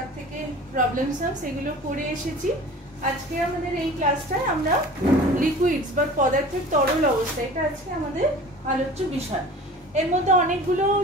থেকে প্রবলেমস সেগুলো পড়ে এসেছি। আজকে আমাদের এই ক্লাসটায় আমরা লিকুইডস বা পদার্থের তরল অবস্থা, এটা আজকে আমাদের আলোচ্য বিষয়। এর মধ্যে অনেকগুলো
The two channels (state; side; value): normal; both; correlation 0.41